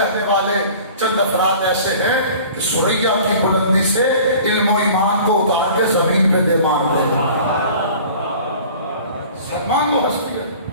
والے چند افراد ایسے ہیں کہ سریا کی بلندی سے علم و ایمان کو اتار کے زمین پہ دے مار دے. سلمان وہ ہستی ہے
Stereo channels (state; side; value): inverted; both; correlation -0.45